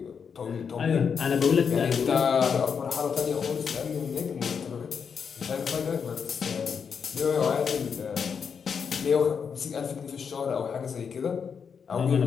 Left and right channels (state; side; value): quieter; right; 6.5 dB